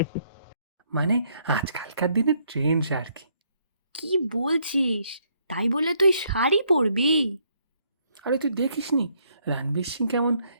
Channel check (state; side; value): inverted; both; correlation -0.70